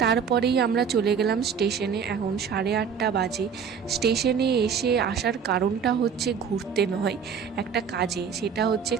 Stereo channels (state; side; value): quieter; left; 6.7 dB